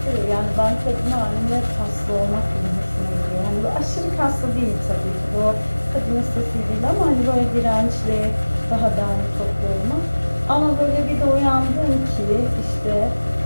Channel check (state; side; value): inverted; both; correlation -1.00